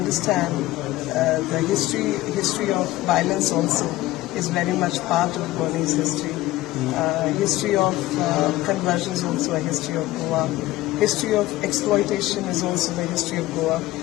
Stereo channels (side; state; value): right; quieter; 17.2 dB